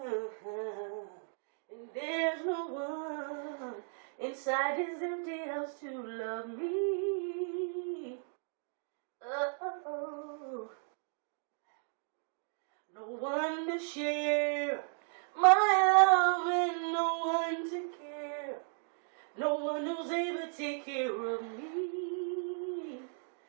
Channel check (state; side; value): silent; left; 54 dB below the other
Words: and there's no one inside this empty house to love me. Oh, no one to share my love and no one to care. No one who's able to take care of me.